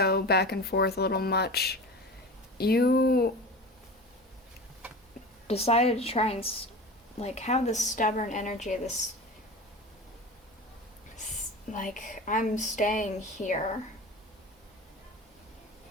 back and forth a little much, you decided to try and have this stubborn energy, this I'm staying here.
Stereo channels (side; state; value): both; normal; correlation 0.32